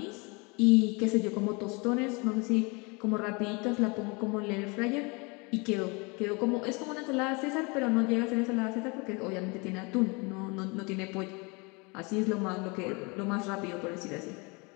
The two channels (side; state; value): right; quieter; 29.2 dB